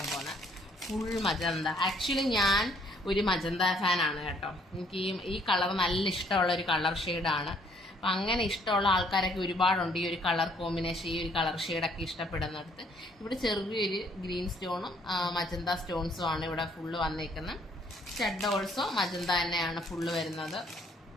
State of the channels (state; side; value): normal; both; correlation 0.64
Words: പോകുന്നത്. Full magenta. ആക്ച്വലി ഞാൻ ഒരു മജന്ത ഫാനാണ് കേട്ടോ. എനിക്ക് ഈ കളർ നല്ല ഇഷ്ടമുള്ള ഒരു കളർ ഷെയ്ഡാണ്. അപ്പം അങ്ങനെ ഇഷ്ടമുള്ള ആൾക്കാരൊക്കെ ഒരുപാടുണ്ട്. ഈ ഒരു കളർ കോമ്പിനേഷൻ, ഈ ഒരു കളർ ഷെയ്ഡൊക്കെ ഇഷ്ടപ്പെടുന്നിടത്ത് ഇവിടെ ചെറിയൊരു ഗ്രീൻ സ്റ്റോണും മജന്ത സ്റ്റോൺസും ആണ് ഇവിടെ ഫുള്ള് വന്നേക്കുന്നത്. സ്റ്റഡ് ഓൾസോ മജന്ത തന്നെയാണ് ഫുള്ള് വരുന്നത്.